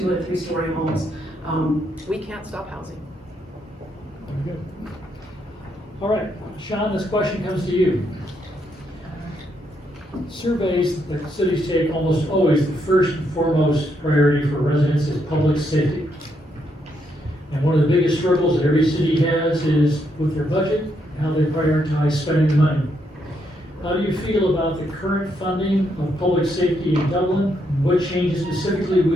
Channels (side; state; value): both; normal; correlation 0.77